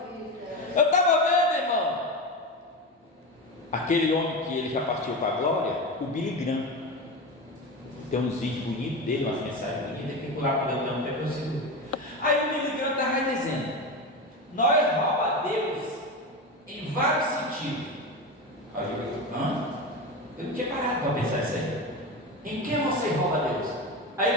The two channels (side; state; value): both; normal; correlation 0.21